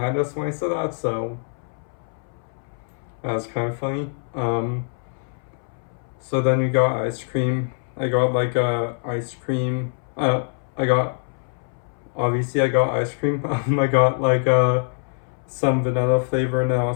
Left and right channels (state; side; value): silent; right; 63 dB below the other